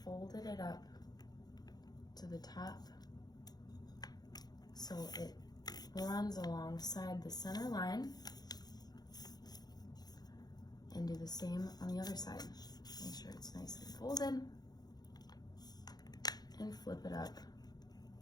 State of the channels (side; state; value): right; late; 0.19 ms